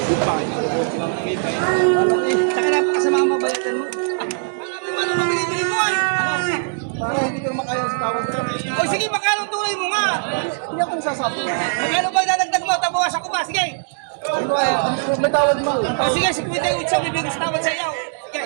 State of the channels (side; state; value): left; silent; digital silence